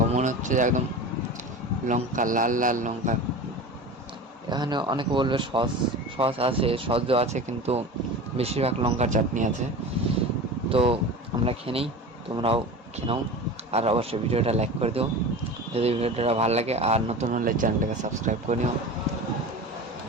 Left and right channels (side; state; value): both; normal; correlation 0.32